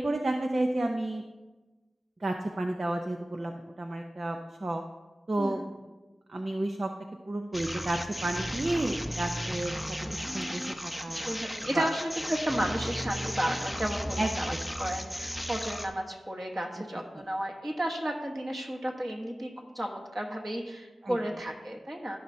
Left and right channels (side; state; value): both; normal; correlation 0.96